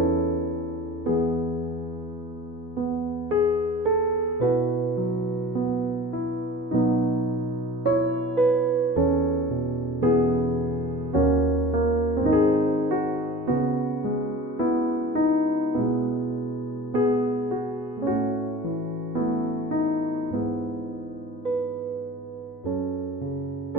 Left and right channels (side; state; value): both; normal; correlation 0.40